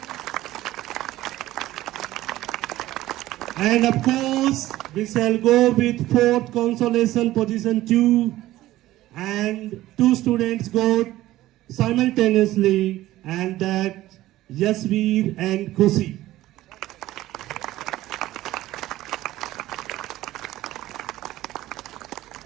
And of course, we shall go with fourth consolation position 2. And 2 students got simultaneously, and that Yasveer and Khushi.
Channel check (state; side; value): quieter; left; 15.7 dB